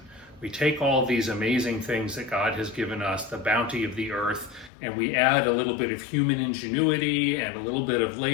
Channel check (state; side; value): drops out; right; at 4.7 s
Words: We take all these amazing things that God has given us, the bounty of the earth, and we add a little bit of human ingenuity and a little bit of